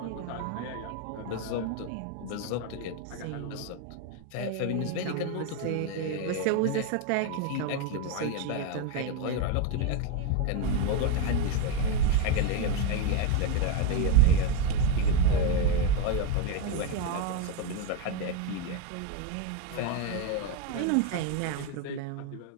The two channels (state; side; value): different; both; correlation 0.03